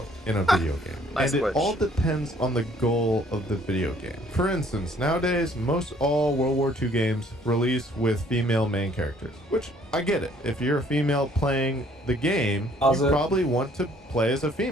in a video game. Nice and switch. It all depends on the goal of the video game. For instance, nowadays, most all World War II games release with female main characters, which I get it. If you're a female playing the game, you probably want to play as a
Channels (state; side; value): normal; both; correlation 0.60